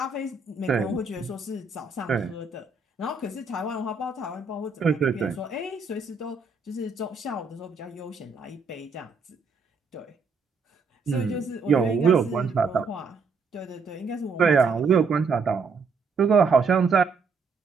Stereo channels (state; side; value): quieter; left; 4.5 dB